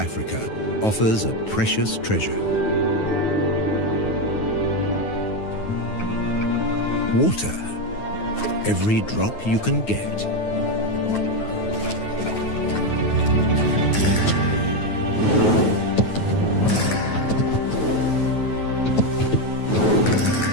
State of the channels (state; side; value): late; right; 9.4 ms